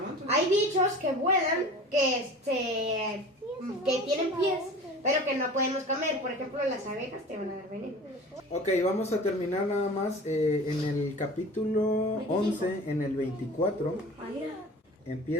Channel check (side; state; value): both; normal; correlation 0.39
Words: hay bichos que vuelan, que tienen pies, pero que no podemos comer. Por ejemplo, las abejas te van a dar veneno. Ok, vamos a terminar nada más en el capítulo 11, en el 24.